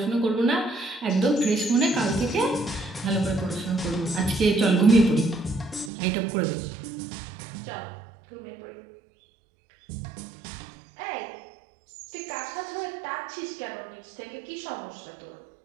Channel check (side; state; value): left; drops out; at 5.9 s